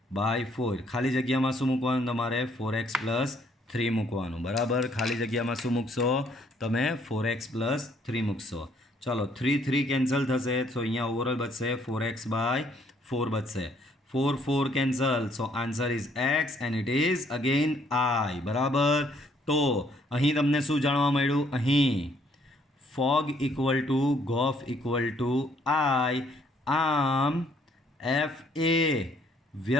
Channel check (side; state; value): both; normal; correlation 0.66